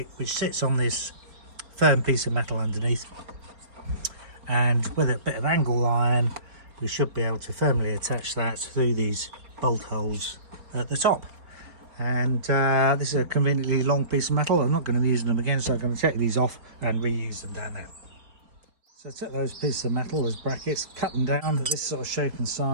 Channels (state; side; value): late; left; 4.3 ms